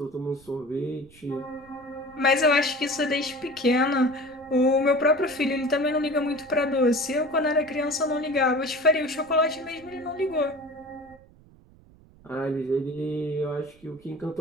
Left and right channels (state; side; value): noise; right; rumble, 26 dB below the sound